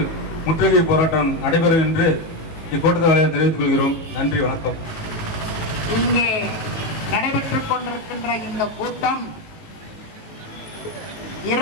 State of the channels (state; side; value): late; right; 19 ms